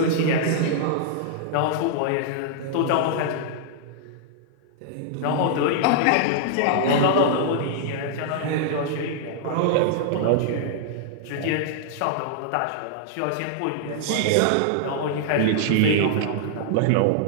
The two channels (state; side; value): different; both; correlation -0.01